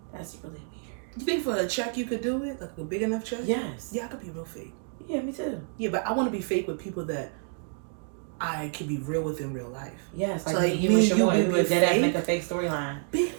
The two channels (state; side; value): silent; left; 58 dB below the other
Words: That's really weird. You think for a check you could do it, like a big enough check? Yes. Yeah, I could be real fake. Yeah, me too. Yeah, but I want to be fake with people that I can be real with in real life. Yes, so like you and Shamoy, we would dead make a fake storyline. Bitch.